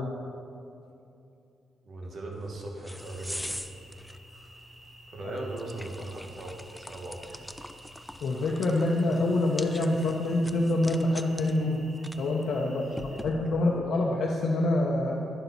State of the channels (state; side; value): normal; both; correlation 0.81